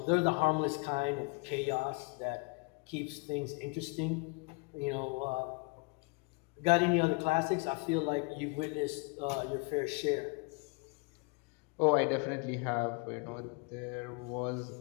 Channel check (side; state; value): right; quieter; 29.6 dB